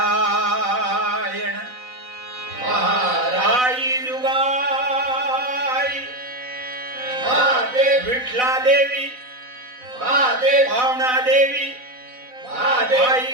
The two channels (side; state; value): left; late; 4.0 ms